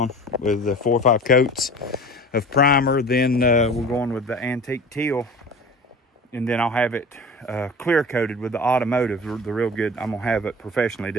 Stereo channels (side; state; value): both; normal; correlation 0.38